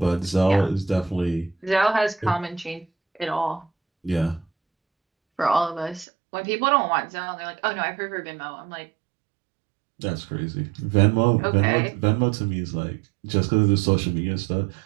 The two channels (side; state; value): left; drops out; at 6.1 s